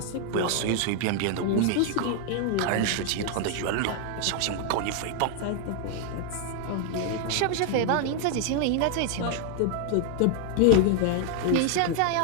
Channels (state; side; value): different; both; correlation 0.00